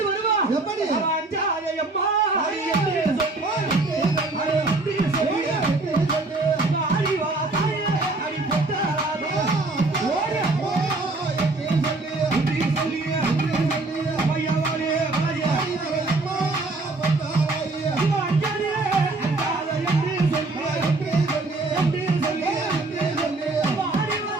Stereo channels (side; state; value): left; quieter; 3.2 dB